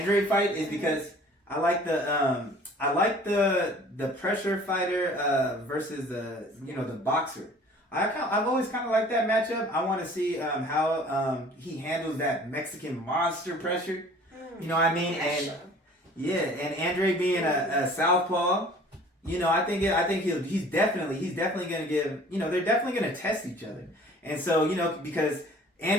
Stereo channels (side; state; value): both; normal; correlation 0.49